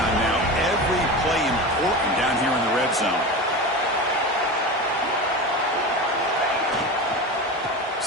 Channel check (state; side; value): normal; both; correlation 0.26